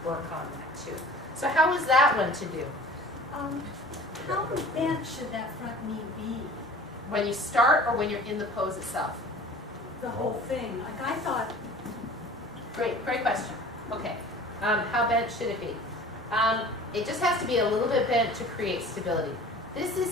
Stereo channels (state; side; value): normal; both; correlation 0.44